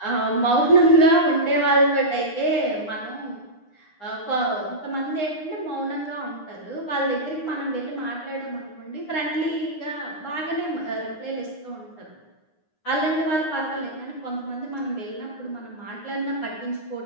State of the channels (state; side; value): late; right; 9.7 ms